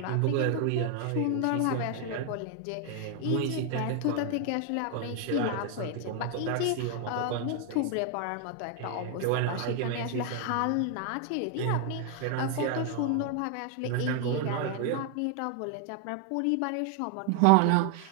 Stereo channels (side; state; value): both; different; correlation 0.01